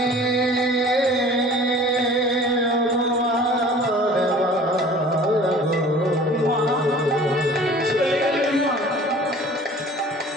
মা চলে গেলেন মা।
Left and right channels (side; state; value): both; normal; correlation 0.46